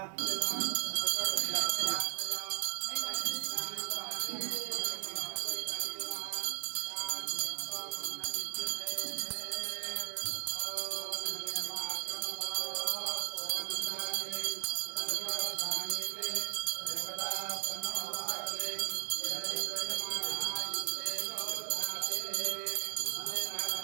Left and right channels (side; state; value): left; silent; 53 dB below the other